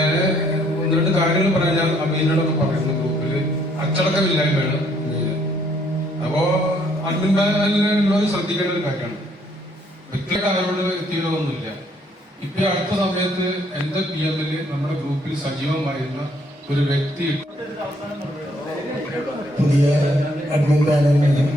1-2 കാര്യങ്ങൾ പറഞ്ഞാൽ അമീനോടൊക്കെ പറയുന്ന ഗ്രൂപ്പിൽ അച്ചടക്കമില്ലായ്മയാണ് മെയിൻ. അപ്പോ അഡ്മിൻ പാനലിലുള്ളവർ ശ്രദ്ധിക്കേണ്ട ഒരു കാര്യമാണ്. വ്യക്തിയുടെ ആരോട് വ്യക്തികളൊന്നുമില്ല. ഇപ്പൊ അടുത്ത സമയത്ത് എന്റെ PM-ൽ നമ്മുടെ ഗ്രൂപ്പിൽ സജീവമായിരുന്ന ഒരു വ്യക്തി പുതിയ അഡ്മിൻ പാനലിന്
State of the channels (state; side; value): normal; both; correlation 0.67